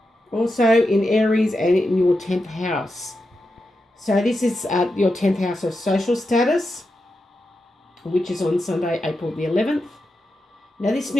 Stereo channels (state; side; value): normal; both; correlation 0.88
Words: also in Aries and in your 10th house. So this is your 10th house of social status, which is on Sunday, April the 11th. Now, this